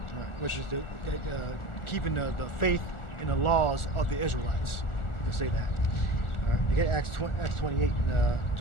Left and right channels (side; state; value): right; late; 1.4 ms